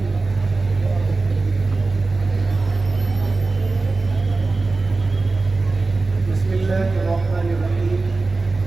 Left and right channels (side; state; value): left; quieter; 3.6 dB